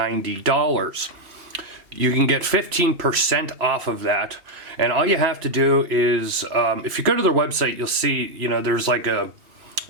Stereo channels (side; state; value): left; late; 2.8 ms